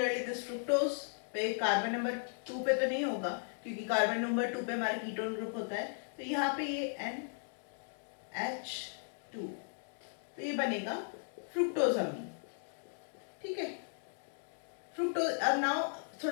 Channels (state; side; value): silent; right; digital silence